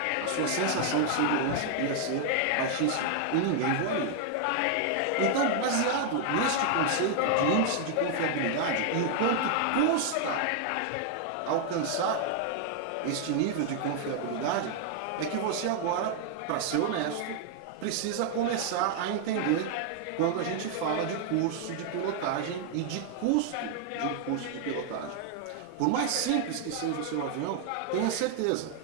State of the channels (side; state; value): both; different; correlation 0.00